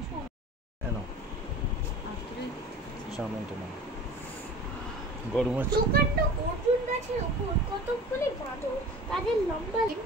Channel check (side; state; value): both; normal; correlation 0.40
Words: গরম আছে। দোকানটা অর্জুন গাছের উপর কতগুলি বাঁদর, তাদের লম্বা